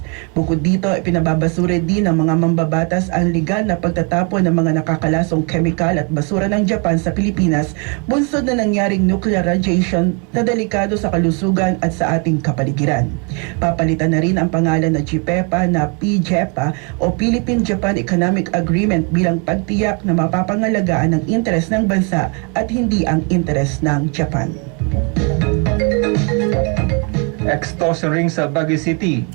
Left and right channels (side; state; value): left; quieter; 35.3 dB